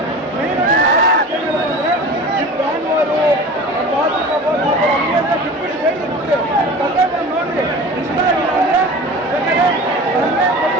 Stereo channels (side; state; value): both; normal; correlation 0.36